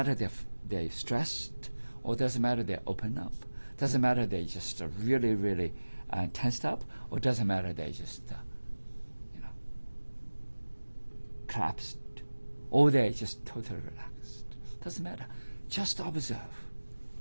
they're stressed, or doesn't matter they're open up. Doesn't matter they just really, really tensed up, or doesn't matter they just, collapsed, or they just totally relaxed. Doesn't matter. Just observe.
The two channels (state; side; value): inverted; both; correlation -1.00